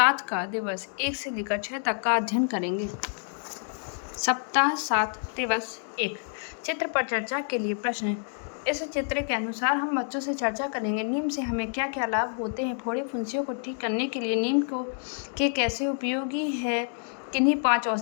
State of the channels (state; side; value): silent; right; 59 dB below the other